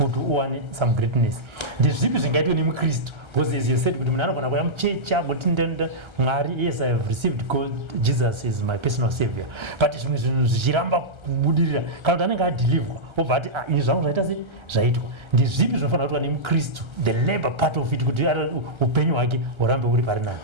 earn some greatness. The zip is engaged in Christ. Because as you said, yes, I have received God, Jesus is my personal savior. But it's Jiramba Budira, Kaldananga deliver. But in some writers, Zaito. The zip is in Christ, the labor part of it could open or Rambo.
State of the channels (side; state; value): left; late; 1.3 ms